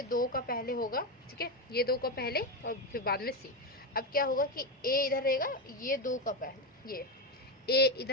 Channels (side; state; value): both; normal; correlation 0.12